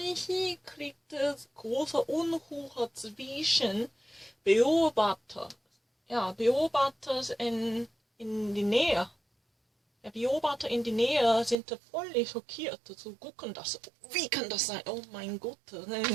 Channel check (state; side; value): drops out; left; at 11.6 s